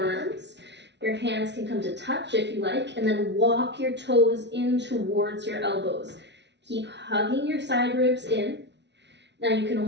Your hands can come to touch if you like, and then walk your toes in towards your elbows. Keep hugging your side ribs in. Now you can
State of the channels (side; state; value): left; late; 0.51 ms